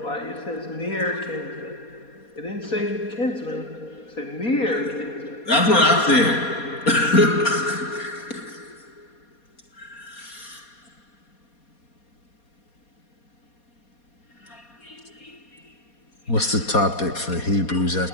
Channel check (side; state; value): right; late; 4.2 ms